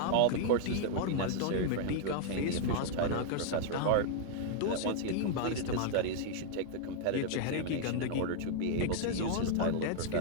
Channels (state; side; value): different; both; correlation -0.01